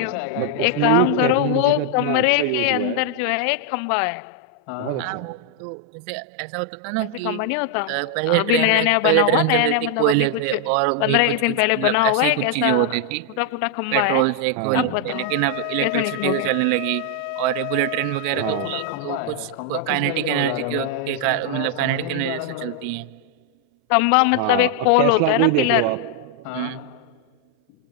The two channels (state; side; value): different; both; correlation 0.00